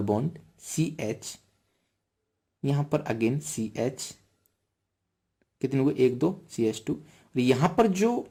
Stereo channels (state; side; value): identical; both; correlation 1.00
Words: bond CH, यहां पर अगेन CH, कितने हुए? 1 2, CH2। और यहां पर